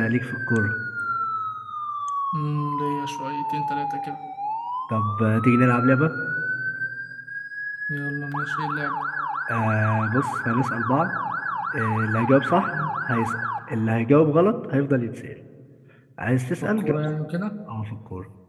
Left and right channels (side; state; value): both; identical; correlation 1.00